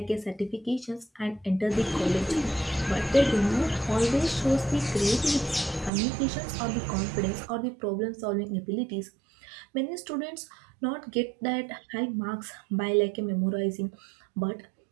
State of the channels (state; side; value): drops out; left; at 5.9 s